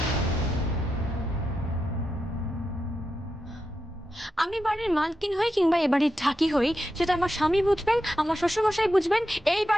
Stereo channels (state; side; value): normal; both; correlation 0.88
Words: আমি বাড়ির মালকিন হই কিংবা এ বাড়ির ঢাকি হই, সেটা আমার স্বামী বুঝবেন, আমার শ্বশুরমশাই বুঝবেন। এই